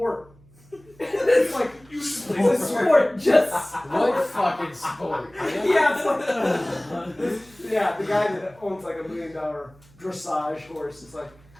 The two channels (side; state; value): right; noise; hum, 27 dB below the sound